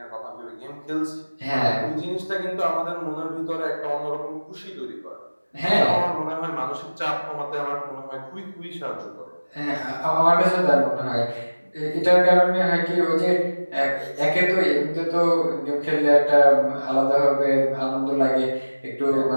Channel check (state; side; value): inverted; both; correlation -1.00